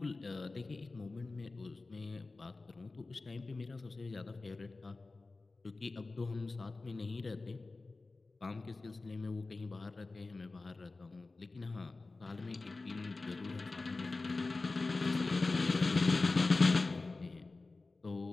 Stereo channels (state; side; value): quieter; right; 3.5 dB